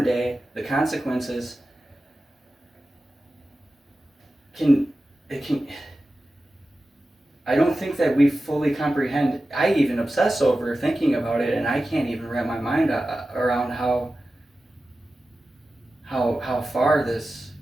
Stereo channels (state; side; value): normal; both; correlation 0.94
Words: day, the consequences can I don't think that we fully comprehend. I even obsess over thinking about it, and I can't even wrap my mind around how far this